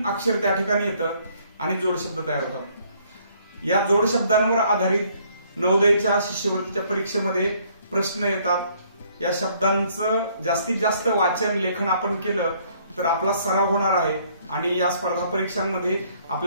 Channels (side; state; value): both; inverted; correlation -0.64